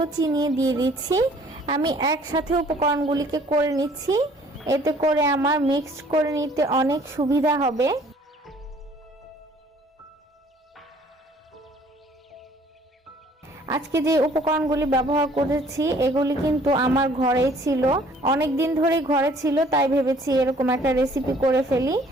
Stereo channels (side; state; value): both; normal; correlation 0.57